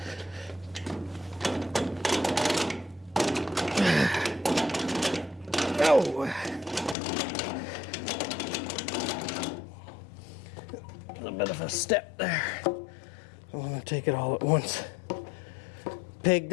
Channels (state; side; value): drops out; right; at 7.0 s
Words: Oh. A bit of a step there. I want to take it all at once. Pig